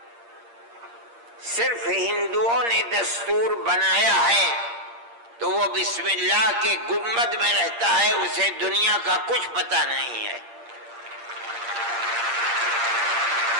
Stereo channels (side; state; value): left; late; 8.6 ms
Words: صرف ہندوؤں نے دستور بنایا ہے تو وہ بسم اللہ کے گنبد میں رہتا ہے, اسے دنیا کا کچھ پتہ نہیں ہے.